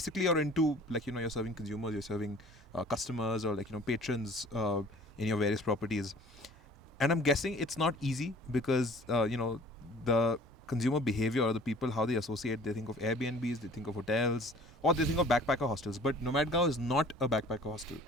you're into you're serving consumers, you're serving customers or patrons in your various properties. And I'm guessing it's not easy because the consumer behavior or the people how they associate, they think of Airbnbs, they think of hotels, or they think of backpacker hostels. But Nomadgao is not a backpacker hostel,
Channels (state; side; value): normal; both; correlation 0.50